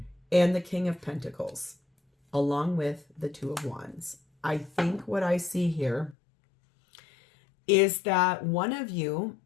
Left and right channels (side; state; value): right; drops out; at 6.2 s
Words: And the King of Pentacles. Along with the Two of Wands. I think what I see here is that one of you